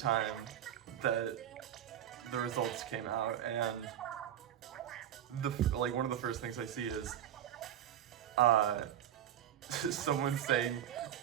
that the results came out, and one of the first things I see is someone saying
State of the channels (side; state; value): left; quieter; 10.7 dB